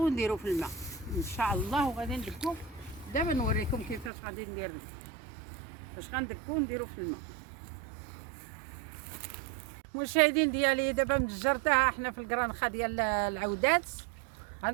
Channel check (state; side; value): drops out; left; at 4.1 s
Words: ونديرو في الماء ان شاء الله، وغادي ندقو. دابا نوريكم كيفاش غادي ندير، باش غندقو ونديرو في الماء. مشاهدين ديالي دابا مجرتها حنا في الكرانخه ديال العودات.